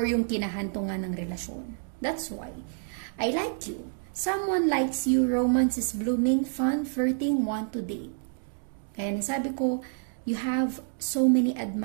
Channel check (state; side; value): silent; left; 59 dB below the other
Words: yung kinahantungan ng relasyon. That's why I like you. Someone likes you, romance is blooming, fun, flirting, want to date. Kaya nasabi ko, you have so many